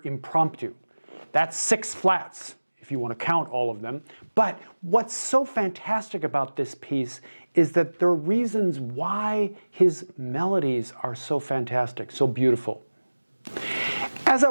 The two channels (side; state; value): both; inverted; correlation -1.00